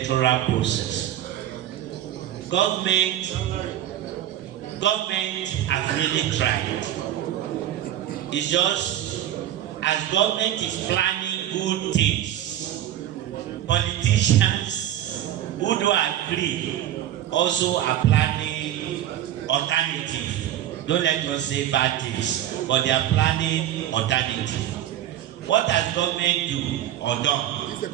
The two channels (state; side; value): quieter; left; 12.0 dB